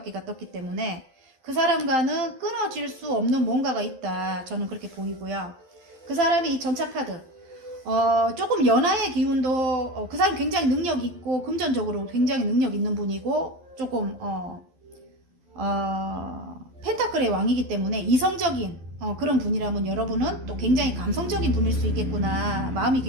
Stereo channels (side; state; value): left; late; 12 ms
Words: 떴기 때문에 그 사람과는 끊어질 수 없는 뭔가가 있다, 저는 그렇게 보이고요. 그 사람이 이 전차카드, 조금 연하의 기운도, 그 사람 굉장히 능력 있고 금전적으로 굉장히 능력 있는 분이고, 조금 펜타클의 왕이기 때문에 이성적인 그런 분이라면 여러분은 또 굉장히 감성적인 분일 수 있겠구나. 마음이